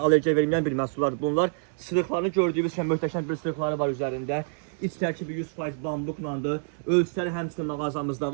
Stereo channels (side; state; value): left; silent; digital silence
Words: verməyən bir məhsullardır bunlar. Sırıqlarını gördüyünüz kimi möhtəşəm bir sırıqları var üzərində. İç tərkibi 100% bambuklandır. Ölçüləri həmçinin mağazamızda